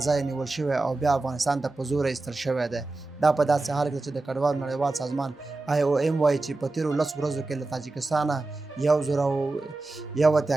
ځای نیول شوی او بیا افغانستان ته په زور ایستل شوی دی. دا په داسې حال کې چې د کډوالو نړیوال سازمان IOM وایي چې په تېرو 10 ورځو کې له تاجکستانه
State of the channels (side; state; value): left; quieter; 3.2 dB